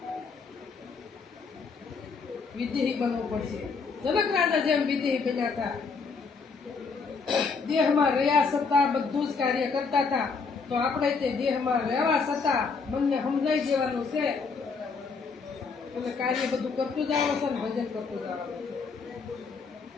વિદેહી બનવું પડશે. જનક રાજા જેમ વિદેહી બન્યા હતા. દેહમાં રહ્યા છતાં બધું જ કાર્ય કરતા હતા તો આપણે તે દેહમાં રહેવા છતાં મનને સમજાઈ દેવાનું છે અને કાર્ય બધું કરતું જવાનું છે અને ભજન કરતું જવાનું છે.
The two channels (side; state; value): right; quieter; 4.9 dB